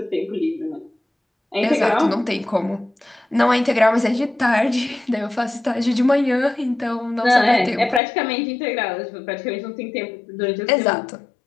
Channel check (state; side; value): drops out; right; at 8.0 s